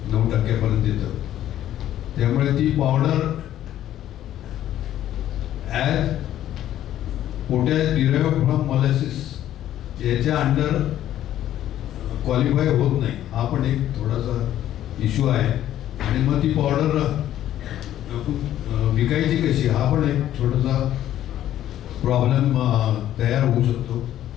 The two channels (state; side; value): quieter; right; 12.2 dB